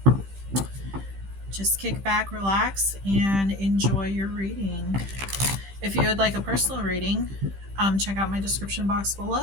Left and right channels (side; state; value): left; late; 15 ms